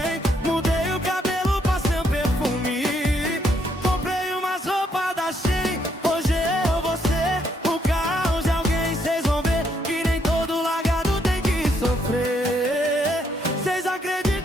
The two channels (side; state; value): both; normal; correlation 0.73